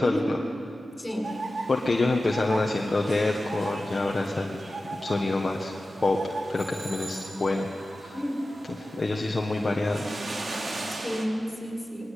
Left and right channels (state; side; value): normal; both; correlation 0.95